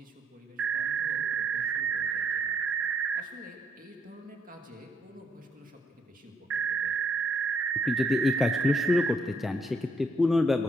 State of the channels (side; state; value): both; normal; correlation 0.71